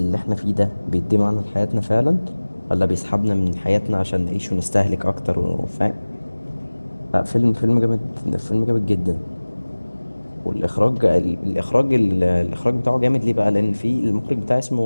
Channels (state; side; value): inverted; both; correlation -1.00